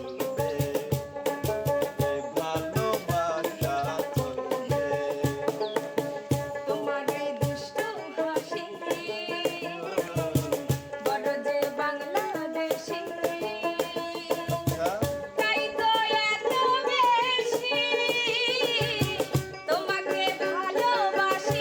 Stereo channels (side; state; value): both; identical; correlation 1.00